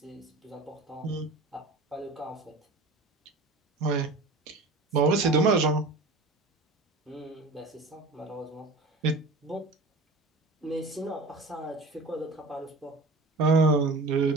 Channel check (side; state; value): left; quieter; 3.1 dB